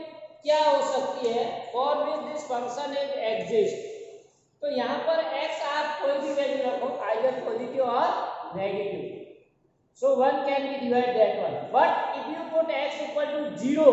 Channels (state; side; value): identical; both; correlation 1.00